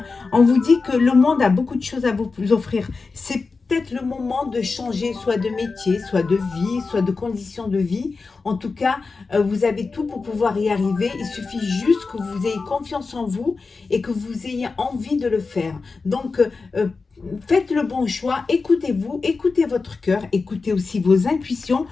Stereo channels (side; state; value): right; quieter; 4.3 dB